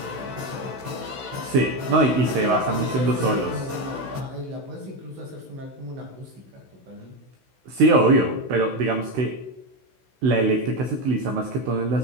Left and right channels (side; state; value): left; late; 16 ms